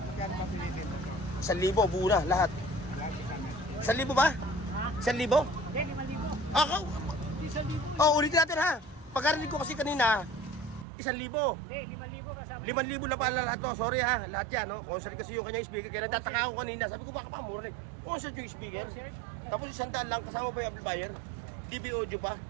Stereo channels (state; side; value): drops out; left; at 10.9 s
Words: ba Pilipin? 1,000, buo na, lahat. 1,000 ba? 1,000? Hindi, 5,000. Ako? Hindi, 1,000. Oh, ulitin natin, ha. Pagkarinig ko kasi kanina, 1,000. Hindi, 5,000 kasama. 5,000 na pala lahat to. Sorry ha, lahat yan. No? Concert kasi yung kanyang speaker. Kaya nagtataka ako kanina. Sabi ko baka pa mura na eh. Concert yung speaker. Tapos 100 lang. Kasama pa yung amplifier. DB audio pa.